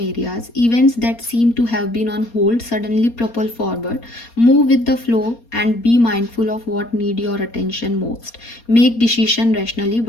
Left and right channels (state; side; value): late; right; 4.3 ms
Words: areas. Events that seem to have been on hold suddenly propel forward. Move with the flow and be mindful of what need your attention most. Make decision rationally